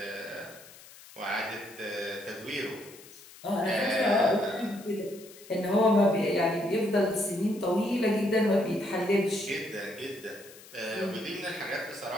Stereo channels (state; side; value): noise; left; hiss, 20 dB below the sound